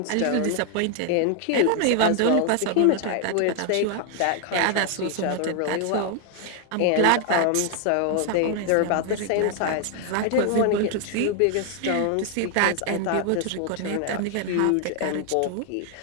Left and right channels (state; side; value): different; both; correlation 0.00